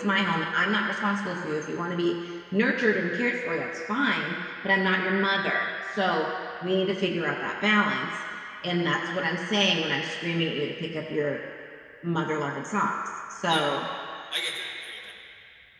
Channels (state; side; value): identical; both; correlation 1.00